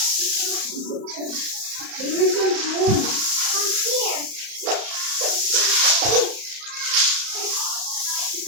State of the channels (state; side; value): late; left; 34 ms